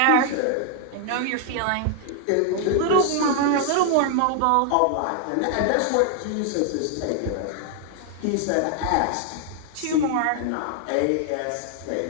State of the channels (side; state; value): both; different; correlation 0.00